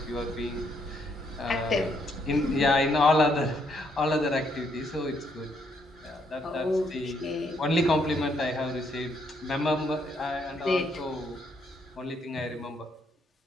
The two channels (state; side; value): normal; both; correlation 0.73